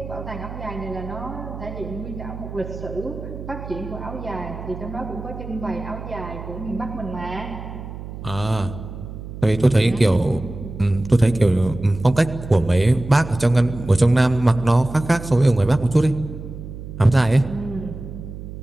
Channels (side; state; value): right; noise; hum, 11 dB below the sound